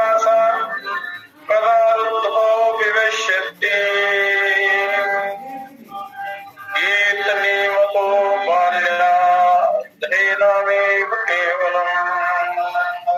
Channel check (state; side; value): identical; both; correlation 1.00